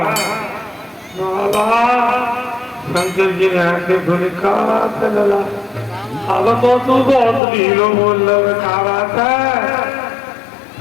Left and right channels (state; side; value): drops out; right; at 7.4 s